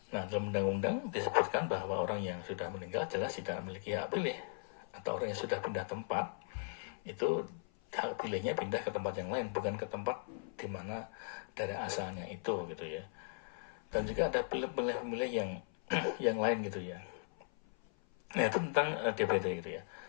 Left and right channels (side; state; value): right; silent; 52 dB below the other